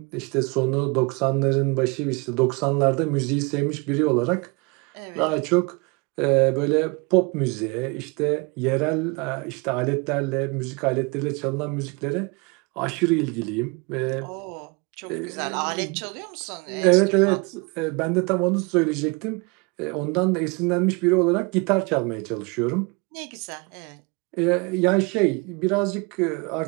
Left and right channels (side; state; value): left; quieter; 29.2 dB